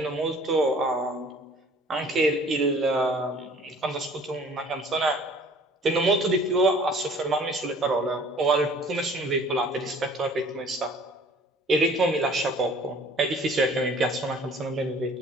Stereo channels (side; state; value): both; normal; correlation 0.52